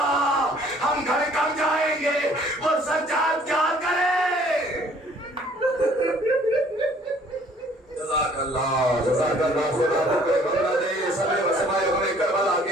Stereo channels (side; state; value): both; normal; correlation 0.57